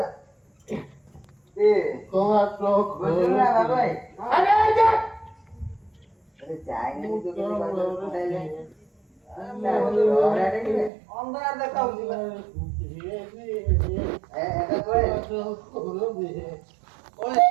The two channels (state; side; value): drops out; left; at 10.9 s